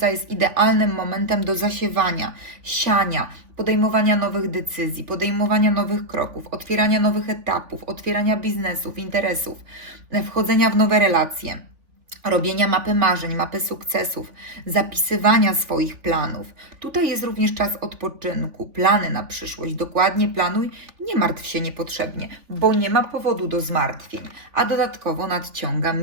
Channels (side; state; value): left; late; 3.4 ms